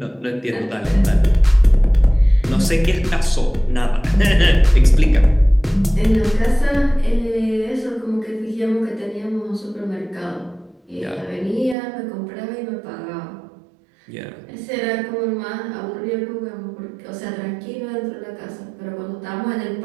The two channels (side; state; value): left; drops out; at 11.8 s